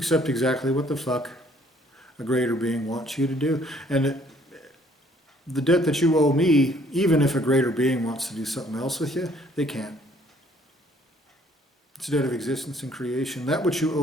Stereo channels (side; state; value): both; normal; correlation 0.62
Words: exactly what the fuck a greater being wants you to do. And the debt that you owe me, even if a greater being wants to do something else with you, they can't. It's a debt of existence and creation. That which you